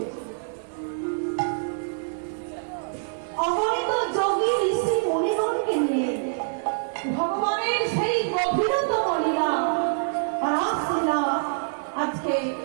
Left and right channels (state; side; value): silent; left; digital silence